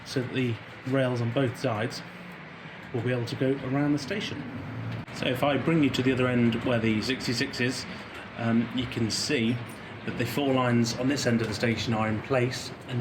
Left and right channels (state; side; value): identical; both; correlation 1.00